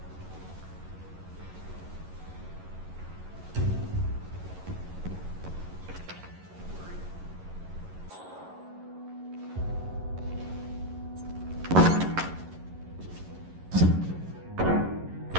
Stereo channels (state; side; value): late; left; 11 ms